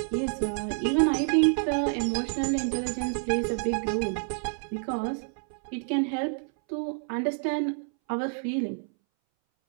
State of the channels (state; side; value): silent; left; 59 dB below the other